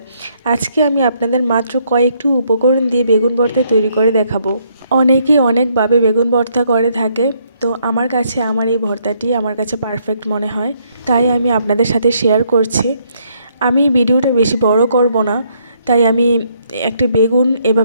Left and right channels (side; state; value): both; inverted; correlation -0.71